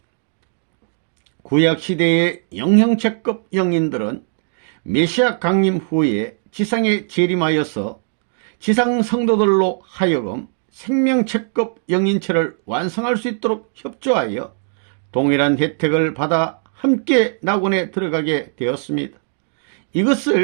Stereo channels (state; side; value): silent; left; digital silence